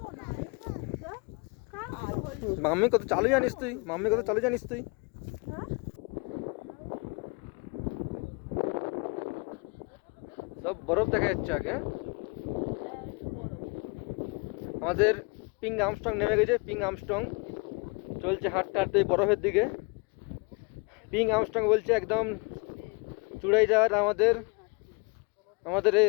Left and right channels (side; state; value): right; quieter; 30.5 dB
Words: মাম্মি কত চালু জানিস তুই, মাম্মি কত চালু জানিস তুই। সব বরফ দেখা যাচ্ছে আগে। আমাদের পিং আর্মস্ট্রং নেমে গেছে। পিং আর্মস্ট্রং চলছে হাঁটতে হাঁটতে বরফের দিকে। পিং আর্মস্ট্রং বলছে একদম চূড়াই যাওয়ার আমাদের আমাদের